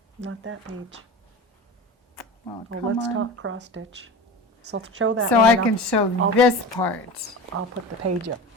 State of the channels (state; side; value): normal; both; correlation 0.31